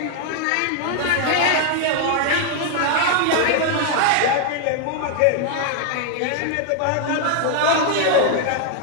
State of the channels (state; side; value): different; both; correlation 0.00